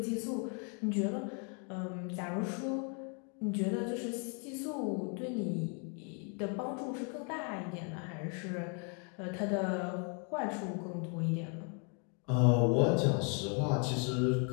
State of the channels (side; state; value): right; quieter; 38.5 dB